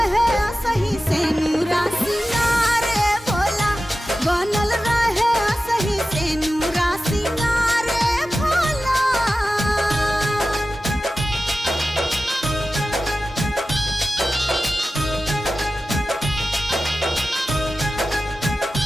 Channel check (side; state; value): both; normal; correlation 0.94